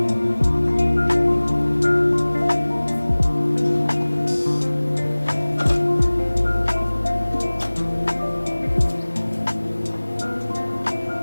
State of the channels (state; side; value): inverted; both; correlation -1.00